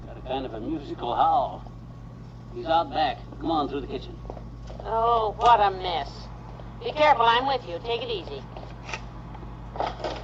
Got a kind of a musical howl. He's out back. Come on through the kitchen. Oh, what a mess. Be careful, I'm with you. Take it easy.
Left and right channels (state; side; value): identical; both; correlation 1.00